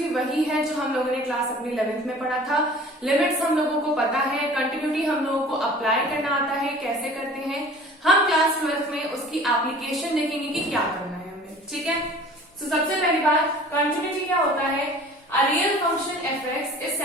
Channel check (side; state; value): both; normal; correlation 0.46